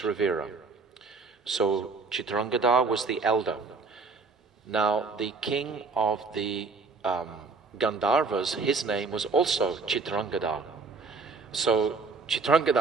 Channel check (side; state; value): left; quieter; 4.2 dB